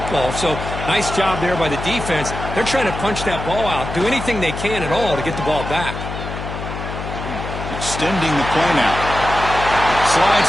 So nice job there by the defense. They're trying to punch that ball out, do anything they can at all to get the ball back. Extending the play now.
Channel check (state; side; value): noise; left; hum, 7 dB below the sound